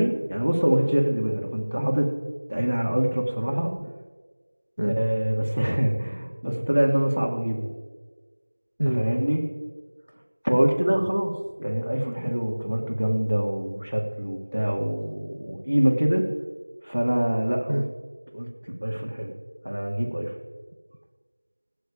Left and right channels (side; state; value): both; inverted; correlation -1.00